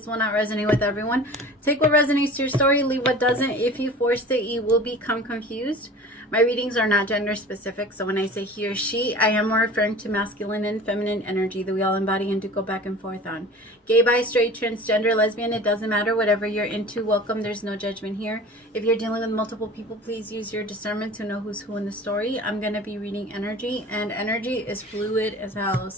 will not resonate with everyone. Take what resonates to your story, leave what doesn't. If you force it, you will become confused. My readings are not gender specific, so when I say he or she, I am referring to masculine and feminine energy that we all embody and do go back and forth on. Gay, bi, straight, transgender, lesbian, it doesn't matter. Whatever you're into, welcome. There's no judgment here. If you're dealing with multiple people, please use your discernment to know who's who in the story. I'm going to be reading energy, and energy is fluid as hell.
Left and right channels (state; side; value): normal; both; correlation 0.40